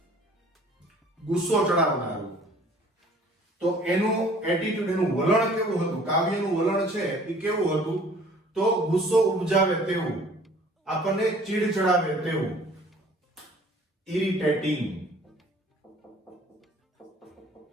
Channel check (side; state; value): both; normal; correlation 0.53